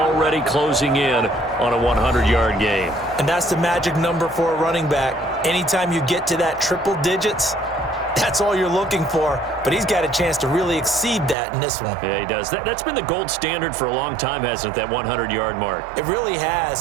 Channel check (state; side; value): drops out; left; at 11.4 s